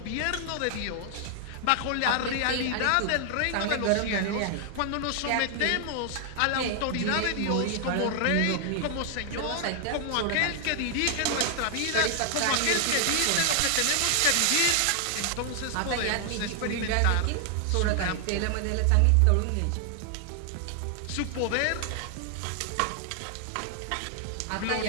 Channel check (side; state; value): both; different; correlation 0.00